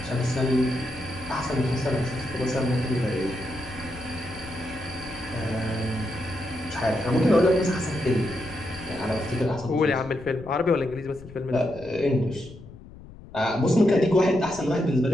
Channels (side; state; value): left; noise; rumble, 17 dB below the sound